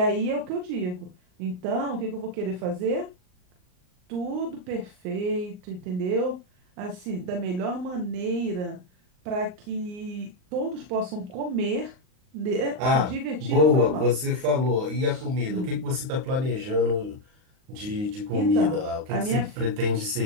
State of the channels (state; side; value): late; left; 39 ms